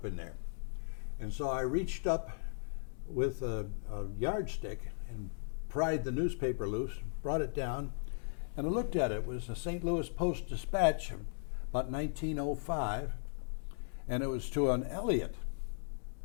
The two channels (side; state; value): right; silent; digital silence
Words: in there. And so I reached up with a yardstick and pried the newspaper loose, brought it down, and I looked at it. It was a St. Louis Post-Dispatch, about 1905, and it was to an Elliott.